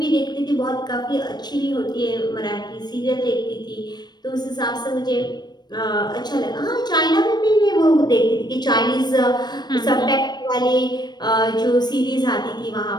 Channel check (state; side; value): late; right; 0.20 ms